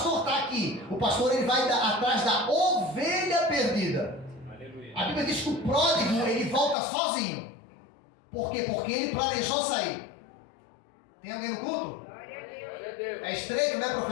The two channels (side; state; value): right; drops out; at 6.8 s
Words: está aqui? O pastor, ele vai atrás da ovelha perdida. Aleluia. A Bíblia diz que o pródigo, ele volta sozinho. Por quê? Porque ele planejou sair. Tem alguém no culto? Glória a Deus. É estreito, né,